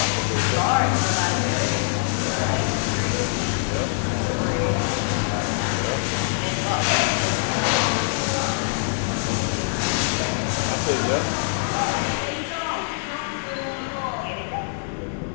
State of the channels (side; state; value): right; silent; digital silence